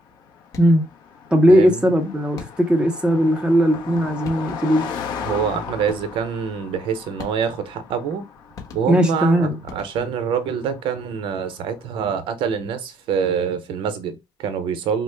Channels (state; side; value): normal; both; correlation 0.70